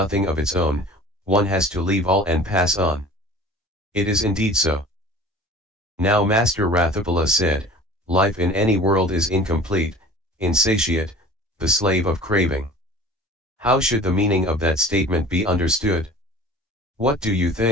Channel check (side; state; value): both; normal; correlation 0.43